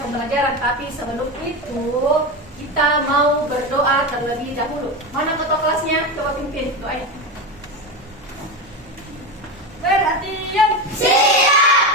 pembelajaran, tapi sebelum itu kita mau berdoa terlebih dahulu. Mana ketua kelasnya? Coba pimpin doanya. Perhatian.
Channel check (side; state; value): both; normal; correlation 0.18